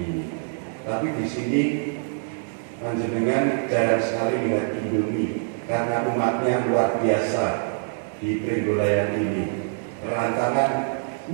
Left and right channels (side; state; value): left; silent; 62 dB below the other